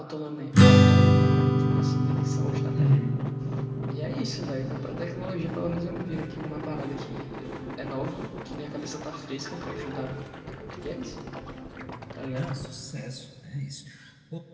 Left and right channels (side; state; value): both; identical; correlation 1.00